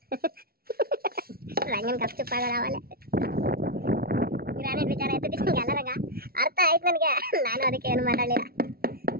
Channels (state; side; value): late; left; 0.44 ms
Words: ರಂಗನ್ ಕಪ್ ಚುಪ್ಪಾಗಲ್ಲ ಅವಲ್ಲೇ. ಗ್ರಾನೈಟ್ ವಿಚಾರ ಆಯ್ತು ನಿಮ್ಗೆ ಎಲ್ಲರಂಗ ಅರ್ಥ ಆಯ್ತು ನನಗೆ. ನಾನು ಅದಕ್ಕೆ ಏನು ಮಾತಾಡಲಿಲ್ಲ.